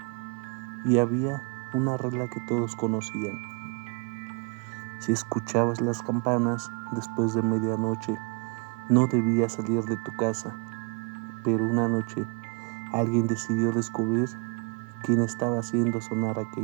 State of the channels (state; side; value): quieter; left; 35.2 dB